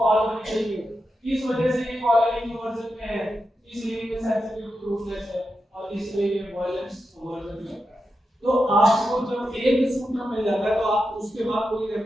हार्मनी चाहिए, इस वजह से ये कॉलरिंग वर्जन में है, इसलिए ये सेंसिटिव टू रूटलेस है और इसलिए ये वायलेंस वर्जन में है। तो आपको जब एक सूत्र मिल जाता है तो आप उसके बाद पूरी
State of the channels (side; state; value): both; normal; correlation 0.88